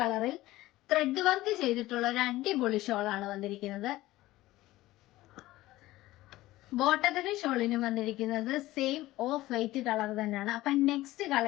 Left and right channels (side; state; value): right; quieter; 17.1 dB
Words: ത്രെഡ് വർക്ക് ചെയ്തിട്ടുള്ള ഒരു അടിപൊളി ഷോളാണ് വന്നിരിക്കുന്നത്. ബോട്ടത്തിനും ഷോളിനും വന്നിരിക്കുന്നത് സെയിം ഓഫ് വൈറ്റ് കളർ തന്നെയാണ്. അപ്പൊ നെക്സ്റ്റ്